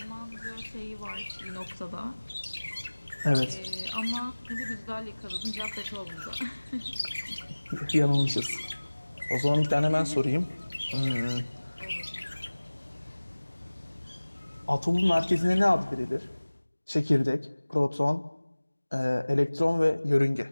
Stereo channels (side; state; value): both; inverted; correlation -1.00